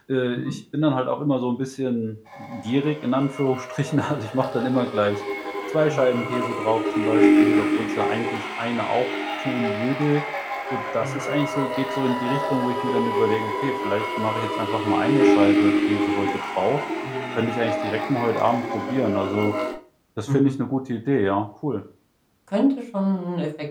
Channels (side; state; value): both; identical; correlation 1.00